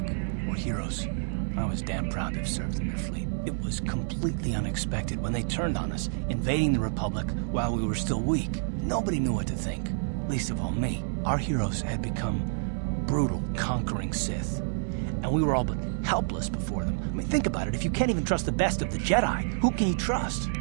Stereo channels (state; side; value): silent; left; digital silence